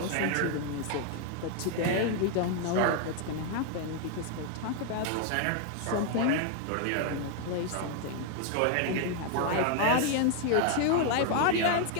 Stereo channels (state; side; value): different; both; correlation 0.00